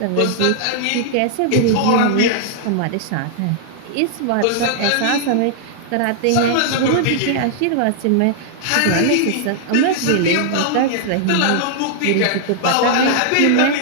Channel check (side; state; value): both; different; correlation -0.01